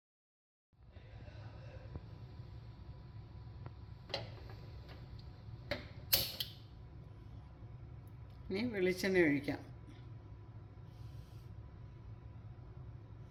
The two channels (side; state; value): both; identical; correlation 1.00